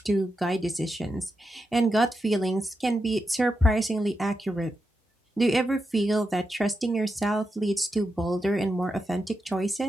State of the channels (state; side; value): normal; both; correlation 0.87